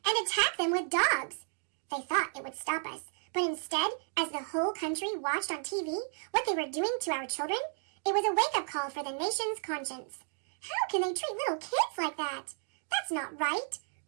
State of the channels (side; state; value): left; silent; 56 dB below the other